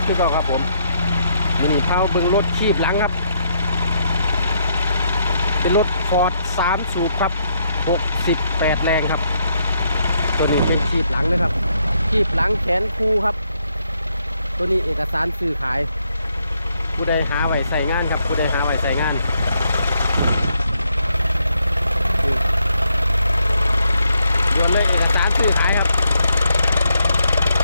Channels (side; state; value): both; inverted; correlation -0.75